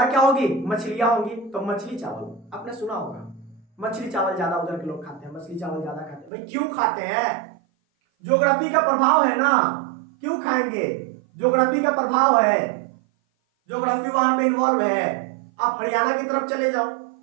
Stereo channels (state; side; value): drops out; left; at 6.3 s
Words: क्या होगी, मछलियां होंगी, तो मछली चावल आपने सुना होगा, मछली चावल ज्यादा उधर के लोग खाते हैं, मछली चावल ज्यादा खाते हैं। भाई क्यों खाते हैं, ज्योग्राफी का प्रभाव है ना, क्यों खाएंगे, ज्योग्राफी का प्रभाव है, ज्योग्राफी वहां पे इन्वॉल्व है। आप हरियाणा की तरफ चले जाओ,